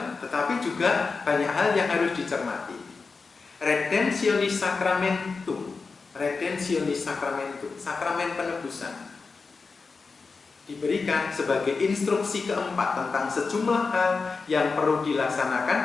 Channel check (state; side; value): quieter; right; 4.5 dB